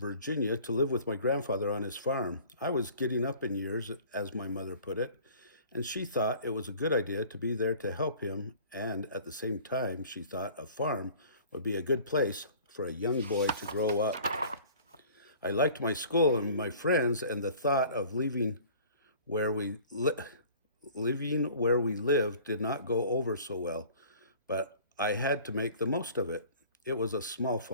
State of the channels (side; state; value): both; inverted; correlation -0.48